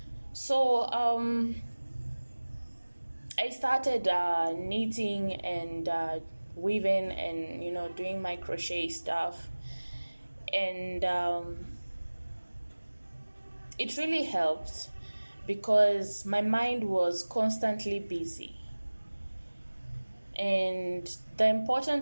So I started knitting and weaving and doing my crochet stuff, and it really helped because my mind was constantly busy. And the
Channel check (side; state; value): both; inverted; correlation -1.00